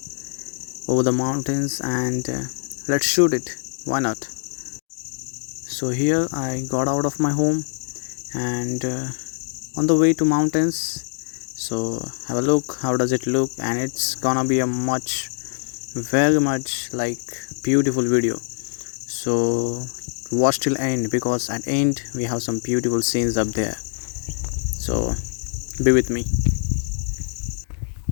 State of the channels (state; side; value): silent; right; digital silence